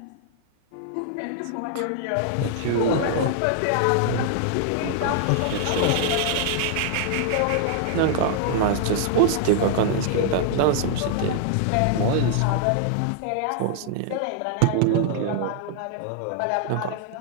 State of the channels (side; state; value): both; different; correlation -0.01